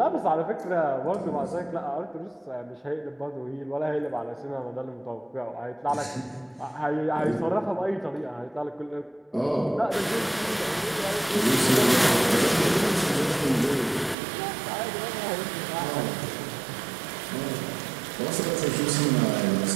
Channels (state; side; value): drops out; left; at 14.2 s